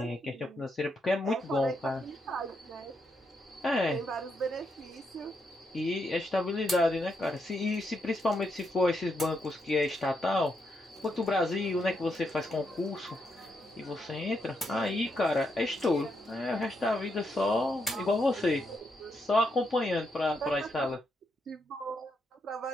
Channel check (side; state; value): both; normal; correlation 0.80